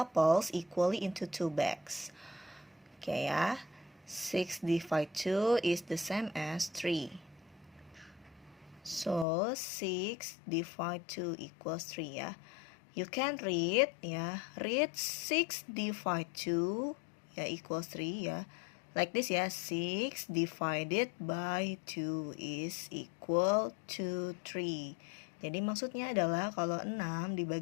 equally into 2 bags. Okay ya, 6 divided 2 is the same as 3. So 6 divided 2 equals 3 ya. You can read ya. Read 6 divided 2 ya equals 3 ya. Like this ya. 6 divided by 2 is equal to 3. Jadi maksudnya adalah kalau 6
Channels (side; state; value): right; drops out; at 9.2 s